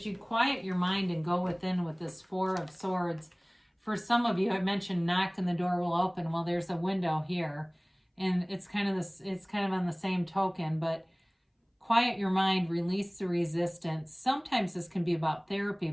you quiet your mind and go within with this Four of Swords, for some of you, I mentioned knock and the door will open. Well, there's a window here. And it's kind of on the same token, but quiet your mind, release the resistance. Sometimes this can be about therapy,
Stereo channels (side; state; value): both; identical; correlation 1.00